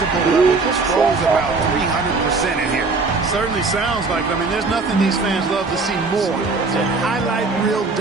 level just rose about 300% in here. Certainly sounds like it. I mean, there's nothing these fans love to see more than highlight reel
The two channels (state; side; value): quieter; left; 3.9 dB